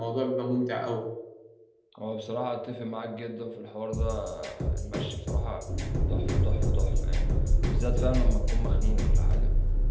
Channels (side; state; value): both; identical; correlation 1.00